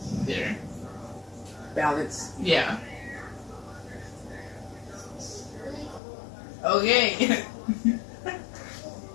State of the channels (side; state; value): right; drops out; at 6.0 s